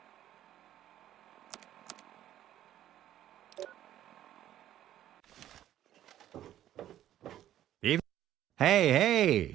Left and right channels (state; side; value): quieter; left; 12.2 dB